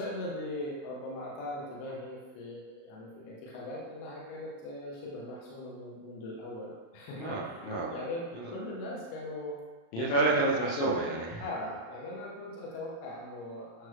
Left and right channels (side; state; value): right; late; 36 ms